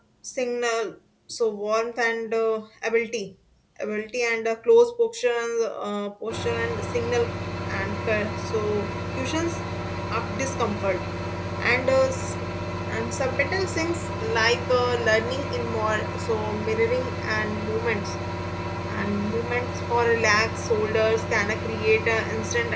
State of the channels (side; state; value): both; identical; correlation 1.00